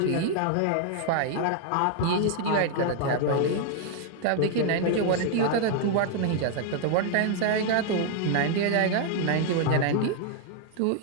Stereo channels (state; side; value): different; both; correlation 0.00